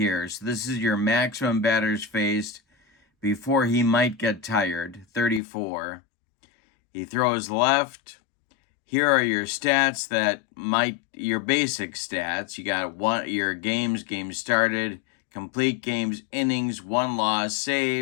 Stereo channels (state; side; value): drops out; right; at 5.4 s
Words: So this is your maximum batters faced before he might get tired, 34. He throws left. Here are your stats your basic stats. You got your games started, complete games, innings, won, loss,